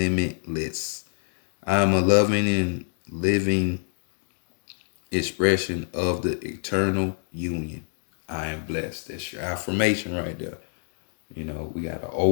I am a loving and living expression of the eternal union. I am blessed. That's your affirmation right there. We got an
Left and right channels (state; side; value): silent; right; digital silence